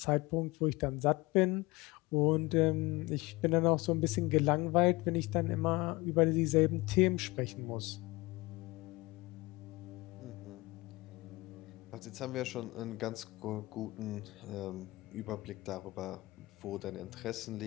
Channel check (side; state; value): right; quieter; 22.1 dB